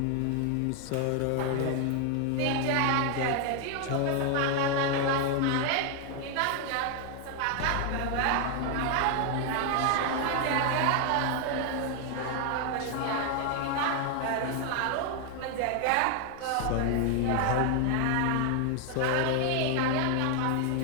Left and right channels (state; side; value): different; both; correlation 0.00